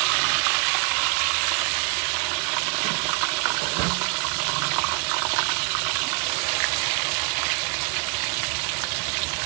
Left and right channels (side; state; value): left; quieter; 33.0 dB